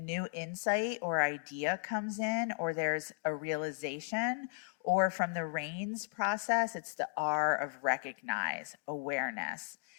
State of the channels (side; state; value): right; quieter; 29.9 dB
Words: insight or idea comes in, or there's a realization, or from the RAINS process, it's the R of recognize, awareness.